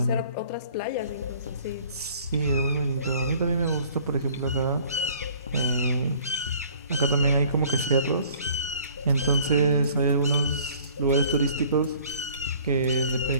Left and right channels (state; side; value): inverted; both; correlation -0.53